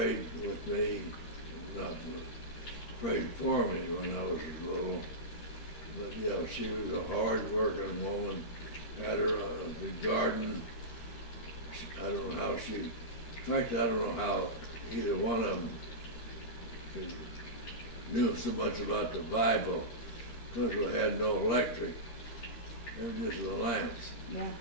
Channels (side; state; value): right; late; 13 ms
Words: with me, not prayed for me when I was little. But yeah, she was a hard-working woman. Had her the garden. I don't know how she. In fact, I don't know how either one of them knew so much about the Bible, because we had no electric. They were just the lamps. Yeah.